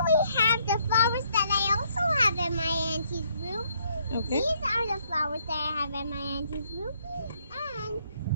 we have the flowers that I also have in my auntie's room. Okay. These are the flowers that I have in my auntie's room. And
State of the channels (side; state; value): both; inverted; correlation -0.70